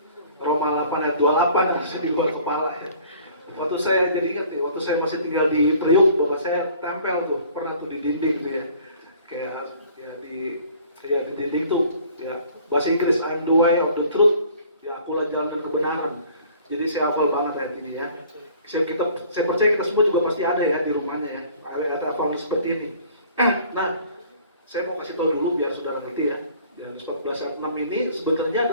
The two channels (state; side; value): inverted; both; correlation -0.52